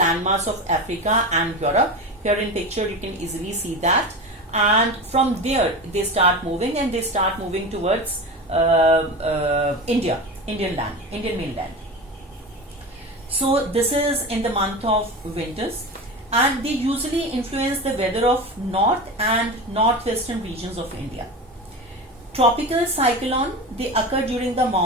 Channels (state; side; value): normal; both; correlation 0.26